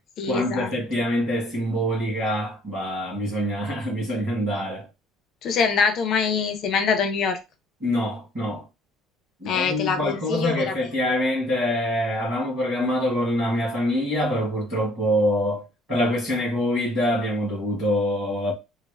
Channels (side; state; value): both; normal; correlation 0.59